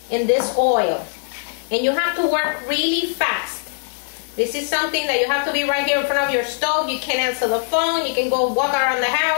in this oil. And you have to work really fast. This is something that you have to be right here in front of your stove. You can answer the phone. You can go walk around the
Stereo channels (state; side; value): silent; right; 63 dB below the other